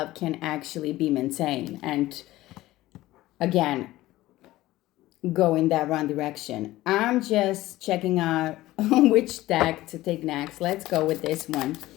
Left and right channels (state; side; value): quieter; right; 16.8 dB